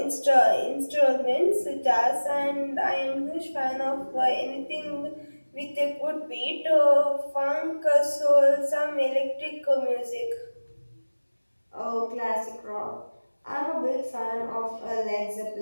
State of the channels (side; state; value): both; inverted; correlation -1.00